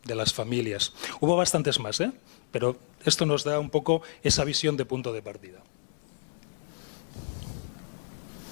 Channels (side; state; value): right; silent; digital silence